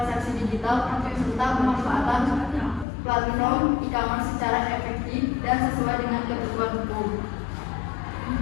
digital, serta pemanfaatan platform e-commerce secara efektif dan sesuai dengan ketentuan hukum.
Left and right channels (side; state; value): right; drops out; at 2.9 s